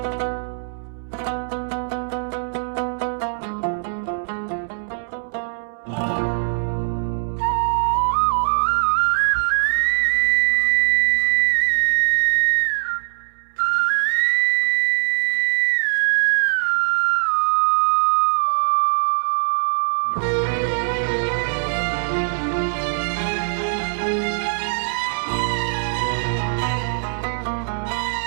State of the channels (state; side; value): silent; left; 64 dB below the other